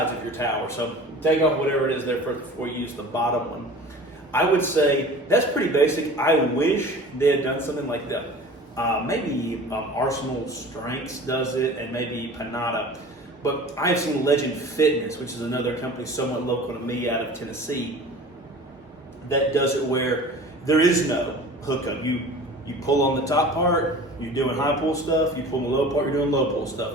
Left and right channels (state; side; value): normal; both; correlation 0.41